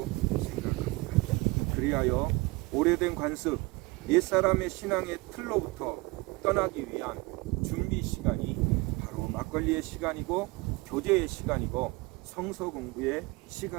생각합니다. 그리하여 오래된 관습, 옛사람의 신앙의 틀로부터 떠나기 위한 준비 시간이 바로 막걸리의 시간이고 교제의 시간이고 성서 공부의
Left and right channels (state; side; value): quieter; left; 24.3 dB